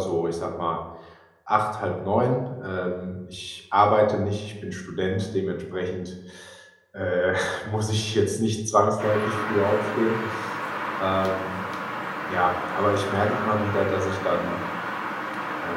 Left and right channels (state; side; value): identical; both; correlation 1.00